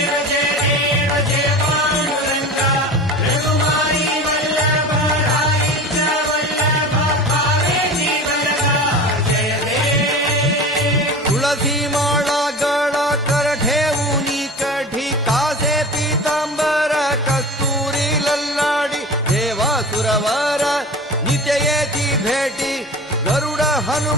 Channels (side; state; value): both; normal; correlation 0.34